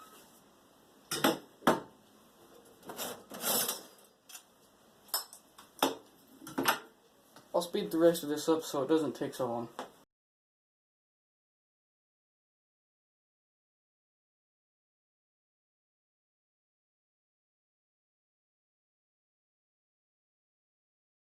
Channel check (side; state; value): both; identical; correlation 1.00